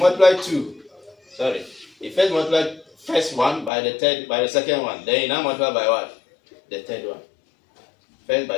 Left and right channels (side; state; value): right; drops out; at 3.7 s